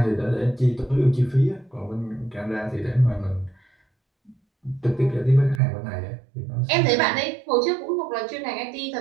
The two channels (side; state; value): left; drops out; at 5.6 s